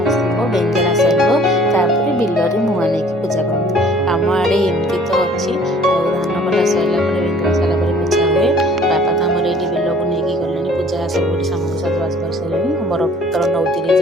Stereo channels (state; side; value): normal; both; correlation 0.53